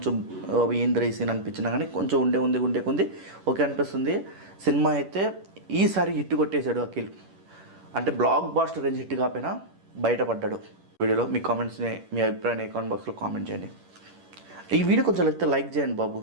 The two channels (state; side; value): late; left; 10 ms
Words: ఏంద్ర ఈ సీన్ అనిపించినా కానీ కొంచెం ఉండే కొంది ఓకే అనిపిస్తుంది. సినిమా అయితే ఈసారి హిట్ కొట్టేశాడు అఖిల్. అంటే బ్లాక్ బాస్టర్ రేంజ్ హిట్ కాకపోయినా బయటపడ్డాడు. వీడియోలో మీ కామెంట్స్ని, మీ అభిప్రాయాన్ని కామెంట్ బాక్స్లో కామెంట్ చేయండి. ఈ వీడియో కొంచెం లైక్ చేయండి బాబు,